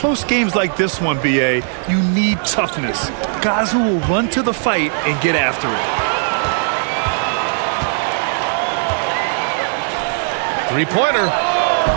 games like this one, BA, you need toughness. Guys who will run to the fight and get after it. 3-pointer.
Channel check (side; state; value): left; silent; 65 dB below the other